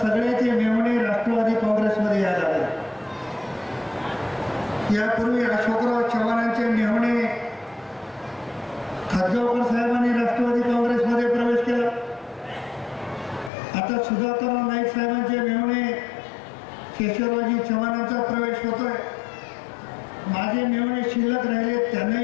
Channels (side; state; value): right; drops out; at 13.5 s